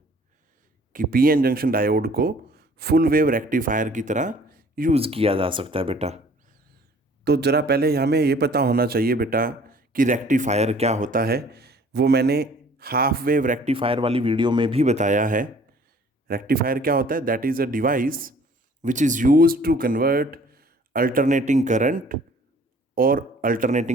कि पीएन जंक्शन डायोड को फुल वेव रेक्टिफायर की तरह यूज़ किया जा सकता है। बेटा तो ज़रा पहले हमें ये पता होना चाहिए बेटा कि रेक्टिफायर क्या होता है। वो मैंने हाफ वेव रेक्टिफायर वाली वीडियो में भी बताया है। रेक्टिफायर क्या होता है? That is a device which is use to convert alternating current और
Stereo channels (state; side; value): normal; both; correlation 0.54